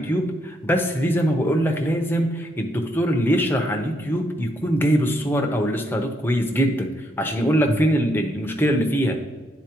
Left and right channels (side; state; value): both; normal; correlation 0.76